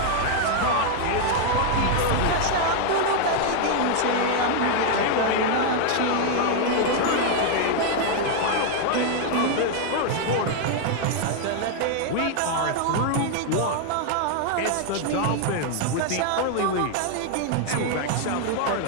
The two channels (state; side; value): different; both; correlation 0.00